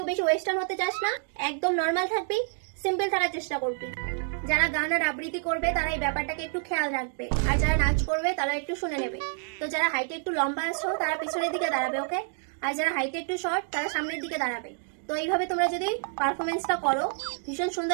বেশি ওয়েস্টার্ন হতে চাস না, একদম নর্মাল থাকবি, সিম্পল থাকার চেষ্টা করবি। যারা গান আর আবৃত্তি করবে তারা এই ব্যাপারটাকে একটু খেয়াল রাখবে, আর যারা নাচ করবে তারা একটু শুনে নেবে। তো যারা হাইটে একটু লম্বা আছো তারা পিছনের দিকে দাঁড়াবে, ওকে? আর যারা হাইটে একটু শর্ট তারা সামনের দিকে দাঁড়াবে। তো এইভাবে তোমরা যদি পারফরমেন্সটা করো ভীষণ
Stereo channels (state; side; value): silent; left; 59 dB below the other